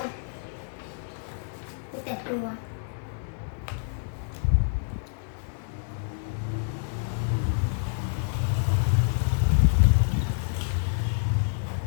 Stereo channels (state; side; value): silent; right; digital silence